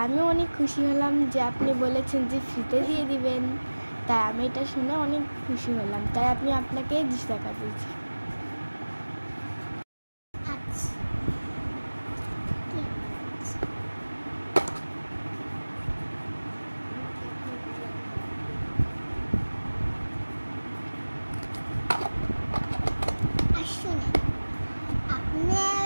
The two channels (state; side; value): inverted; both; correlation -1.00